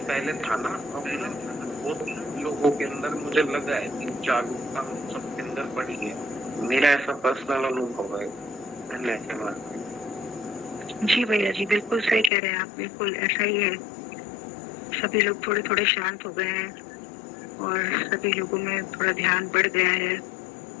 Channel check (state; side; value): drops out; right; at 12.3 s